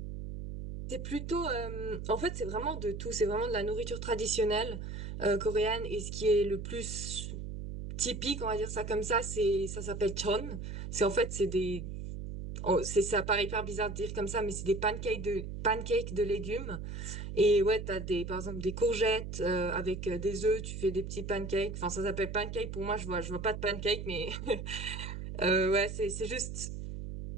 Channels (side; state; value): right; noise; hum, 7 dB below the sound